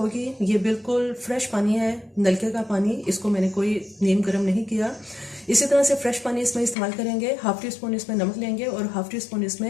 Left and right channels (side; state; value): right; drops out; at 6.8 s